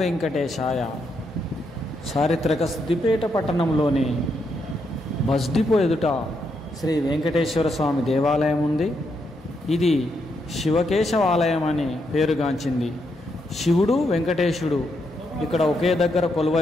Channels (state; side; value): normal; both; correlation 0.79